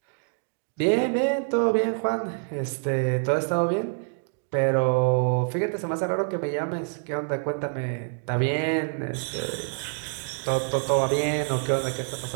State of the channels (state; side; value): silent; left; 61 dB below the other